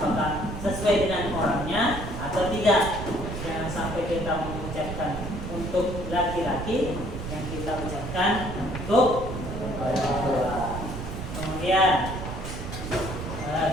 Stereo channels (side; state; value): right; noise; rumble, 6 dB below the sound